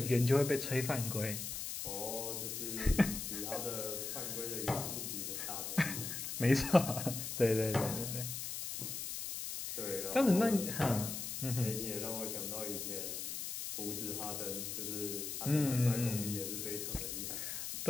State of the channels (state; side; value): noise; left; hiss, 5 dB below the sound